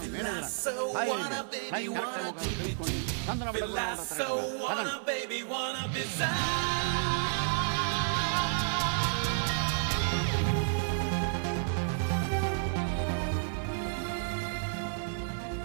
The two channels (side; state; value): left; silent; 57 dB below the other